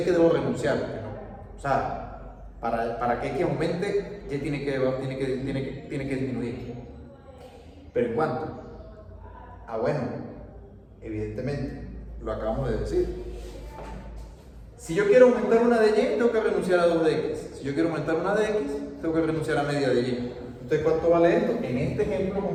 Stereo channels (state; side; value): identical; both; correlation 1.00